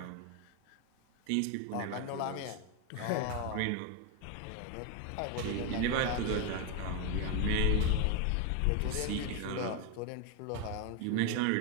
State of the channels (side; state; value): both; different; correlation 0.01